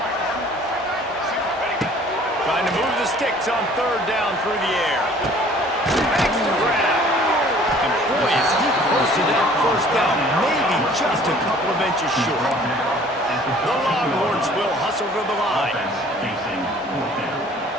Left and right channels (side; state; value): both; normal; correlation 0.53